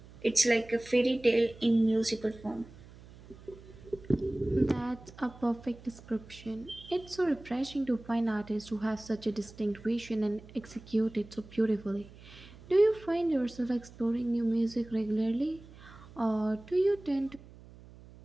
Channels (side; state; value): right; noise; hum, 20 dB below the sound